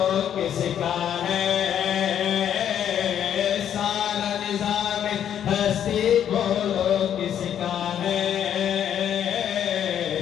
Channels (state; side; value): quieter; right; 9.6 dB